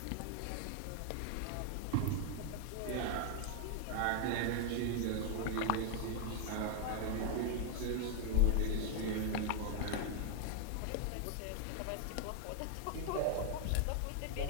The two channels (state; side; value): different; both; correlation 0.00